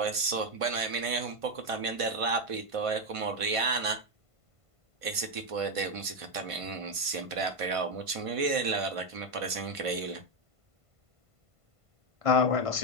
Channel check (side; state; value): left; late; 1.5 ms